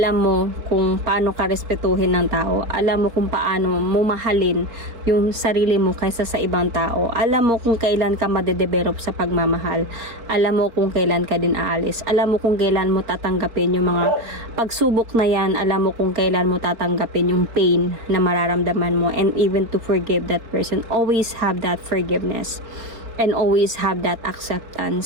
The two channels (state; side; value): late; left; 4.3 ms